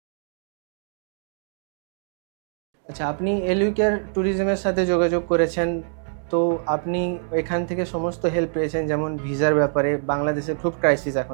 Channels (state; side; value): silent; left; digital silence